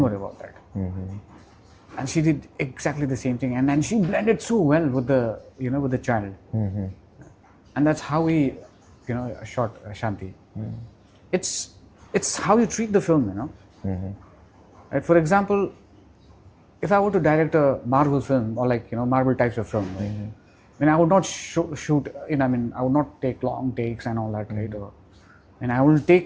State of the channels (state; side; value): identical; both; correlation 1.00